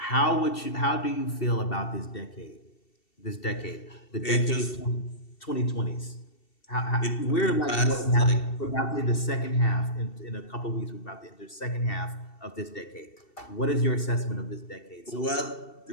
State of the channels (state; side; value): late; right; 2.7 ms